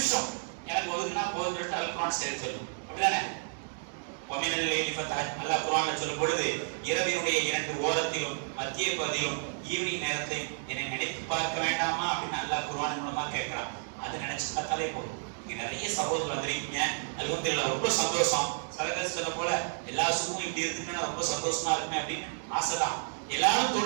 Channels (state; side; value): silent; left; digital silence